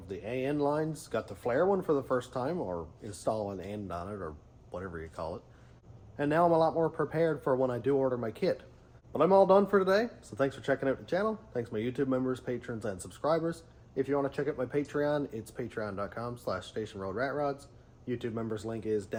the AN lines, got to flare one for the first time, or install an end on it, or whatever you call it. And now I'm a lot more prepared for when I do order my kit. But I'm all done for today, so thanks for checking out the channel. Thanks my YouTube members, patrons, and subscribers. If you want to check out my Patreon, it's patreon.com/stationroadratrods. YouTube members link is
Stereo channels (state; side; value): identical; both; correlation 1.00